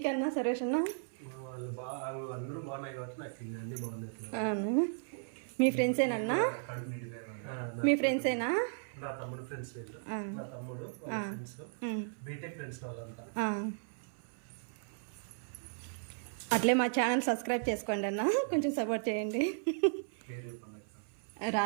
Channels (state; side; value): silent; left; 54 dB below the other